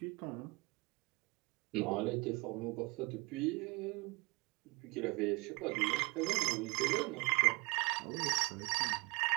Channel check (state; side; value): quieter; left; 26.3 dB